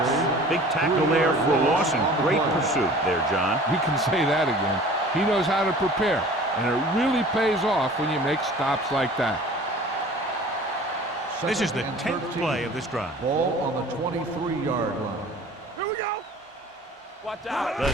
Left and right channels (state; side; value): normal; both; correlation 0.45